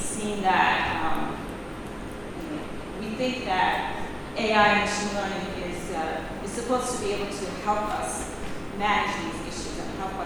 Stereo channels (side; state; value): both; identical; correlation 1.00